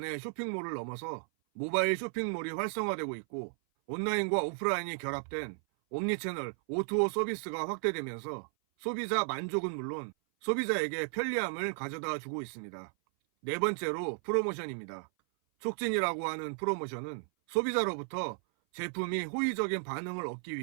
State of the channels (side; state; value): left; silent; 55 dB below the other